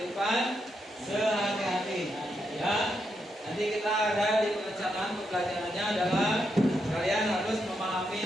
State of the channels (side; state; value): both; normal; correlation 0.82